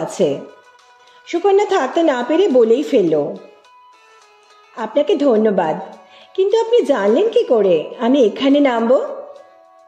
আছে। সুকন্যা থাকতে না পেরে বলেই ফেলল, আপনাকে ধন্যবাদ, কিন্তু আপনি জানলেন কি করে আমি এখানে নামবো?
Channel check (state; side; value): identical; both; correlation 1.00